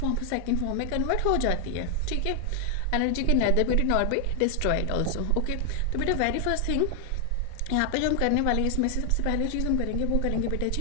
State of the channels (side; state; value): both; different; correlation 0.00